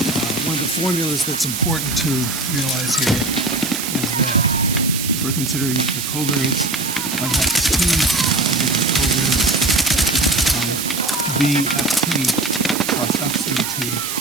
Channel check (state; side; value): noise; right; hiss, 4 dB below the sound